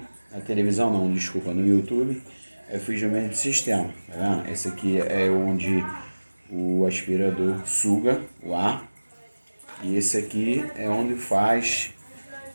na televisão, não, desculpa, no YouTube. Eu fiz o mesmo sistema, tá vendo? Esse aqui é onde o aspirador suga o ar. E esse aqui é onde faz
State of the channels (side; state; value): both; inverted; correlation -1.00